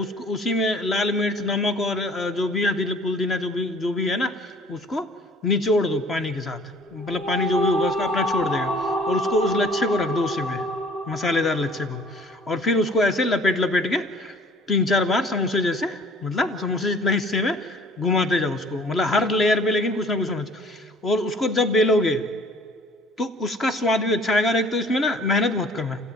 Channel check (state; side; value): normal; both; correlation 0.53